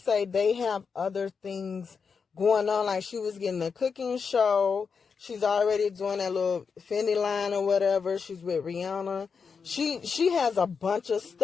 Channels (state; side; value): quieter; right; 5.7 dB